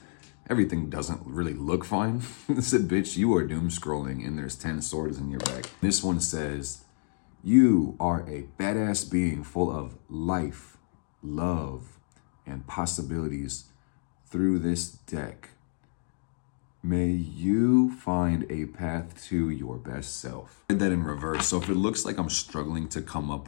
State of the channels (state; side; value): silent; right; 58 dB below the other